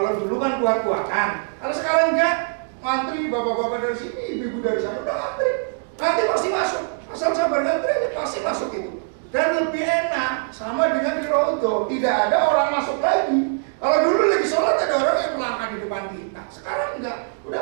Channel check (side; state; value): left; silent; digital silence